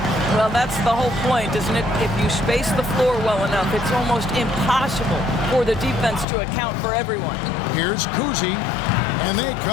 Well, that's the whole point, isn't it? If you space the floor well enough, it's almost impossible for the defense to account for everyone. Here's Kuzi, and they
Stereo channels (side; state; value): right; drops out; at 6.2 s